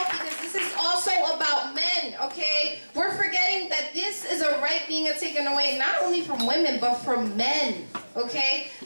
because this is also about men, okay? We're forgetting that this is a right being taken away not only from women but from men, okay?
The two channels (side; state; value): both; inverted; correlation -1.00